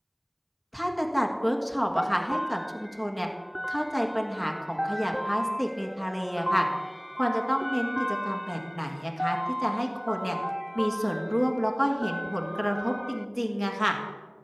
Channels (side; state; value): both; identical; correlation 1.00